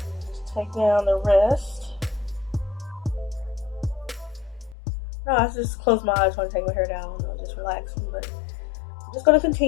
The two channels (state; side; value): drops out; right; at 4.8 s